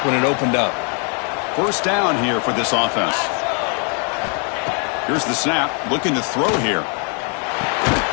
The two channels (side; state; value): right; quieter; 39.7 dB